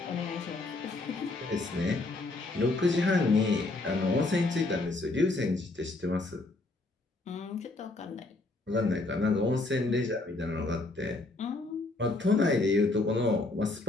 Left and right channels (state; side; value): quieter; right; 3.1 dB